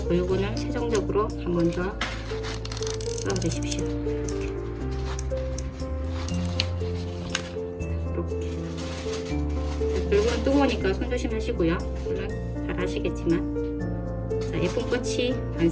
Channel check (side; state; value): both; identical; correlation 1.00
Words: 글루건을 최종적으로 한 번 더 넣어 주십시오. 글루건은 뜨거우니까 손 조심하시고요. 물론 잘 아시겠지만 자, 예쁜 꽃이